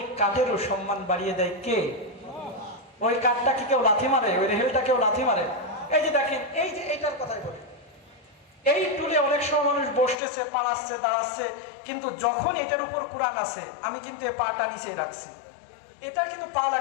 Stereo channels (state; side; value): drops out; right; at 10.2 s